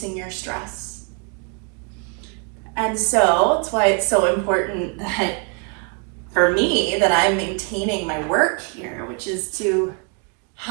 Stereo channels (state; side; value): quieter; left; 35.4 dB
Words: your stress. And so that's why it's so important that for me that I'm maintaining my work here, which is to